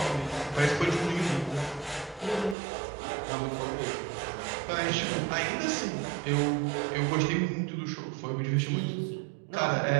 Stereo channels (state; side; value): drops out; left; at 2.6 s